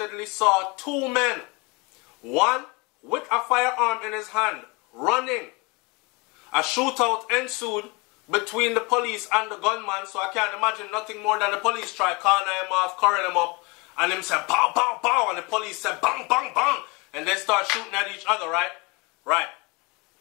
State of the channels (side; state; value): right; quieter; 27.9 dB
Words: saw 2 men, one with a firearm in his hand, running. A shootout ensued between the police and the gunman, so I can't imagine nothing more than the police try calling him off, curling him up, and him said, "Bow, bow, bow," and the police said, "Bang, bang, bang," and they start shooting at each other, right? Right.